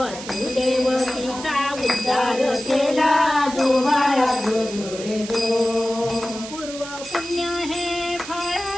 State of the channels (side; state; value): right; noise; hiss, 12 dB below the sound